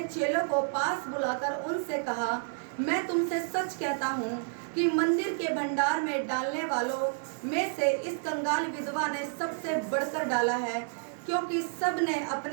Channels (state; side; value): silent; left; digital silence